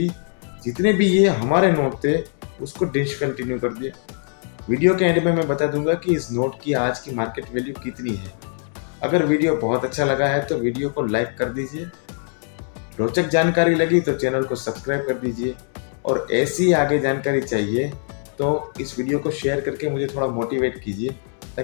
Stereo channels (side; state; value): right; silent; 60 dB below the other